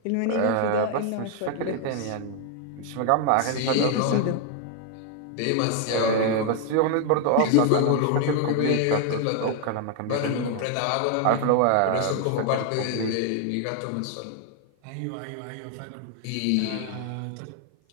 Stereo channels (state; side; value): different; both; correlation 0.00